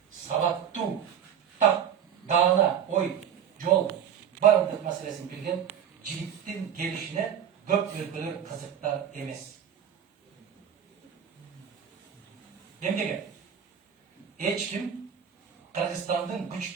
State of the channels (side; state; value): left; quieter; 8.7 dB